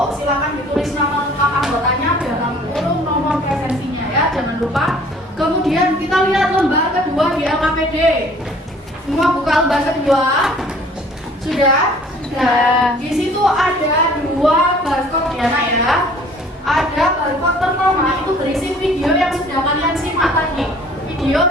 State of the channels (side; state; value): both; normal; correlation 0.53